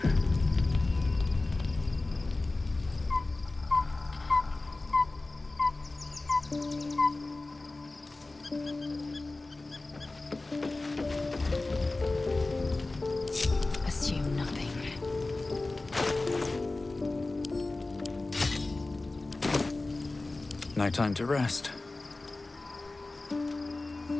Assume nothing. No time to rest.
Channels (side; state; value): right; quieter; 3.2 dB